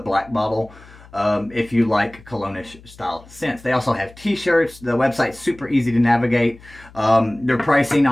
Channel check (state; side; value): noise; left; hum, 22 dB below the sound